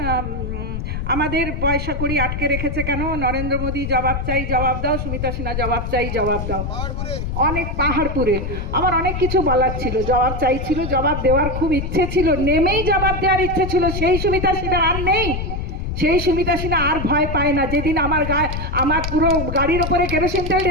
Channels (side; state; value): left; noise; rumble, 4 dB below the sound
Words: আমাদের পয়সা করি আটকে রেখেছে কেন, নরেন্দ্র মোদী জবাব চাই জবাব দাও, সুমিতা সিনহা জবাব চাই জবাব দাও, অনেক পাহাড়পুরে। আমার অনেক কিছু বলার ছিল, জবাব চাইছিল, জবাব দেওয়ার খুব ইচ্ছে ছিল, নেমেই জবাব দেওয়ার ইচ্ছে ছিল। সেই সুমিতা সিনহা আর নেই, সেই সুমিতা সিনহা আর ভয় পায় না। যেদিন আমার পুরো গাড়ির ওপরে কেরোসিন তেল